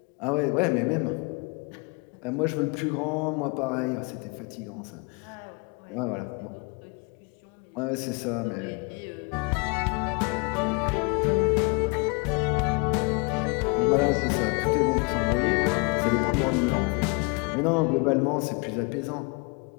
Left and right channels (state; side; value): quieter; right; 32.2 dB